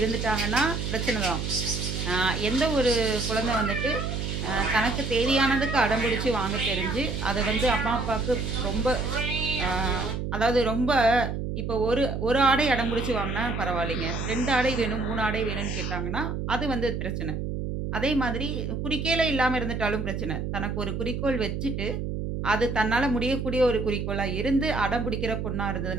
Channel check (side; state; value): right; noise; hum, 3 dB below the sound